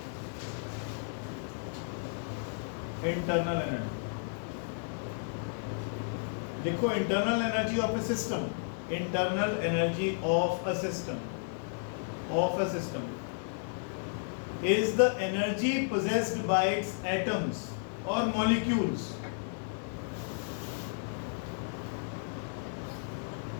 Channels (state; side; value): silent; right; 56 dB below the other